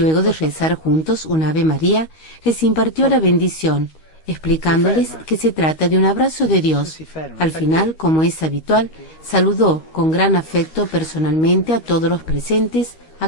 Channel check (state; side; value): late; right; 13 ms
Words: de rezar juntos un Ave María, les impartió la bendición, explicándoles que se trata de un abrazo de Dios. Al final, como es habitual, saludó con gran afecto personalmente a todos los presentes,